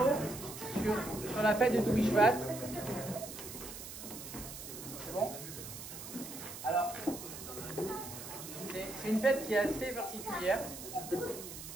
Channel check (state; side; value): noise; right; hiss, 10 dB below the sound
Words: sur la fête de Tou Bishvat. C'est bon? Alors, c'est une fête qui est assez particulière.